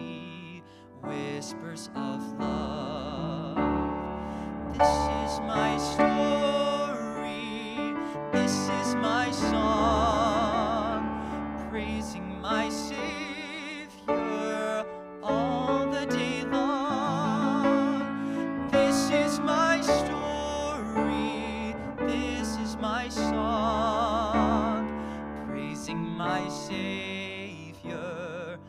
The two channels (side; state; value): both; identical; correlation 1.00